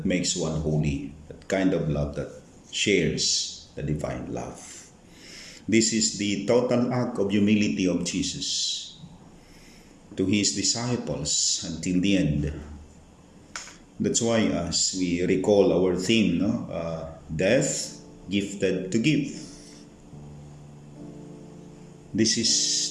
makes one holy. That kind of love that shares the divine love. This is the total act of humility of Jesus to his disciples until the end. That's why as we recall our theme, death gifted to give. This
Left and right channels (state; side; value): identical; both; correlation 1.00